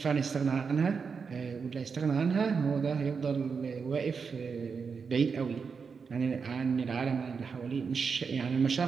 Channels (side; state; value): left; quieter; 5.6 dB